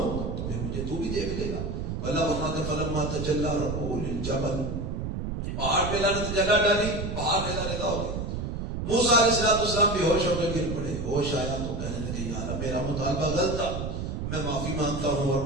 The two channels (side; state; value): right; noise; rumble, 4 dB below the sound